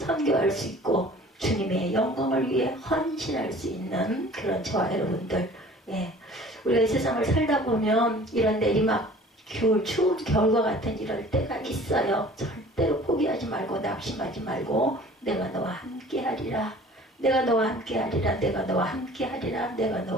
수 있고 주님의 영광을 위해 헌신할 수 있는 그런 저와 여러분들. 우리가 이 세상을 살다 보면 이런 내리막 추운 겨울과 같은 이럴 때가 있어요. 절대로 포기하지 말고 낙심하지 말고 내가 너와 함께 하리라. 내가 너와 함께 하리라. 내가 너와 함께 하리라. 내가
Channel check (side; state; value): both; normal; correlation 0.48